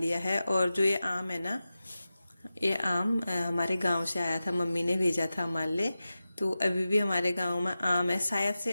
है। और जो ये आम है ना, ये आम हमारे गांव से आया था, मम्मी ने भेजा था हमारे लिए। तो अभी भी हमारे गांव में आम है, शायद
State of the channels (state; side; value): inverted; both; correlation -0.93